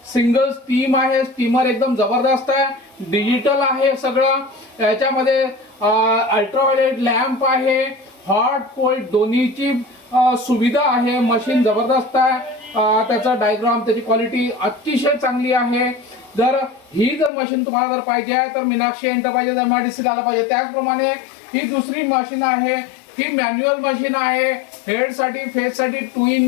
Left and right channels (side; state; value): right; drops out; at 17.3 s